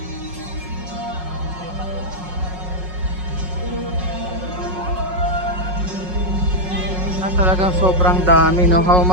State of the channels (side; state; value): left; late; 5.5 ms